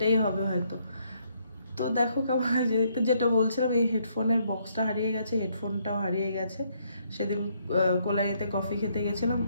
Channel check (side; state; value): both; inverted; correlation -0.71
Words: হবে হয়তো। তো দেখো কেমন হয়েছে দেখতে, যেটা বলছিলাম, এই হেডফোনের বক্সটা হারিয়ে গেছে, হেডফোনটাও হারিয়ে গেছে, সেদিন কোলাইতে কফি খেতে গেছিলাম